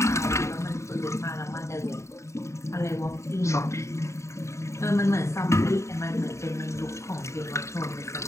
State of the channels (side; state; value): right; late; 0.14 ms